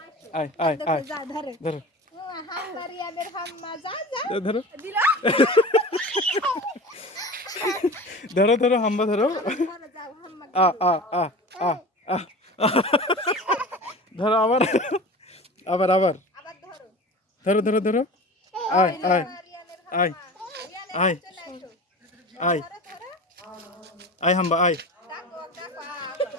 আয় আয় আয় ধরো ধরো ধরো ধরো হাম্বা ধরো আ আ আ আ আ ধরো আবার আবার আবার ধরো ধরো ধরো আয় আয় আয় আয় আয় আয় হাম্বা আয়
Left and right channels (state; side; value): normal; both; correlation 0.35